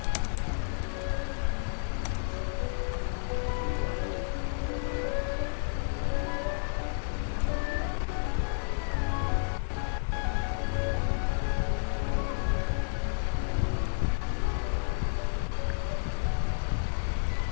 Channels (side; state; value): right; silent; digital silence